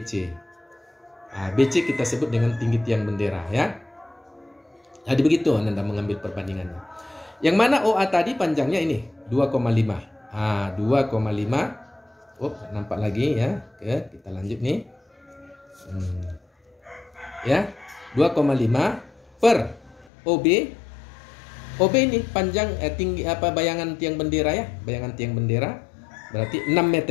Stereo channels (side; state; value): right; drops out; at 20.1 s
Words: BC kita sebut dengan tinggi tiang bendera ya. Jadi begitu Anda mengambil perbandingannya. Yang mana OA tadi panjangnya ini 2,5. 2,5. Nampak lagi ya. Oke, kita lanjut nih. Ya, 2,5 per OB OB ini panjang tinggi bayangan tiang bendera ya, bayangan tiang bendera berarti 6